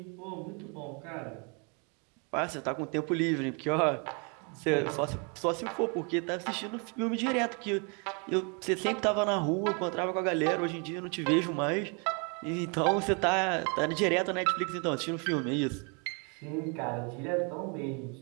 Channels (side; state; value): left; quieter; 35.0 dB